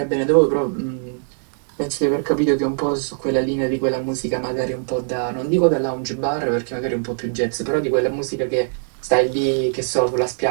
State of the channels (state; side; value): silent; left; digital silence